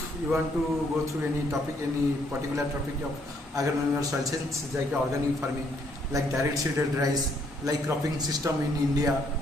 you want to go through any topic, any particular topic of agronomy or soil science, like organic farming, like direct seeded rice, like cropping system in India.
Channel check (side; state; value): both; normal; correlation 0.69